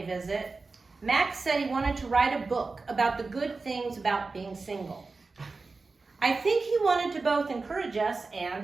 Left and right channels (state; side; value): quieter; left; 3.9 dB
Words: visit, Max said he wanted to write a book about the good things about being single. I think he wanted to both encourage us